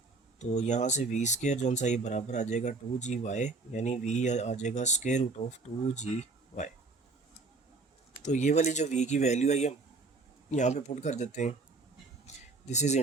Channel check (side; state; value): left; quieter; 3.7 dB